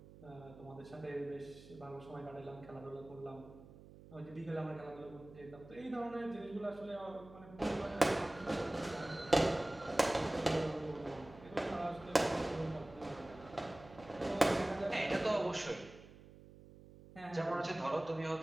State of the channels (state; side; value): noise; right; hum, 19 dB below the sound